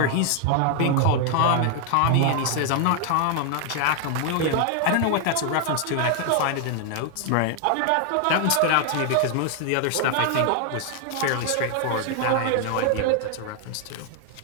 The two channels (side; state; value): both; different; correlation 0.00